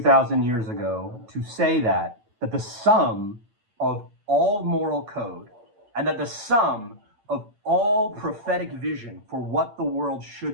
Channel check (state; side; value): late; left; 9.1 ms